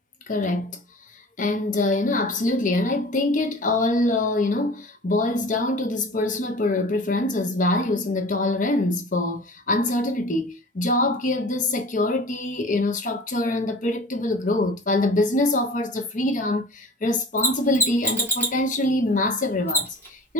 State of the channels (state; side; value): normal; both; correlation 0.41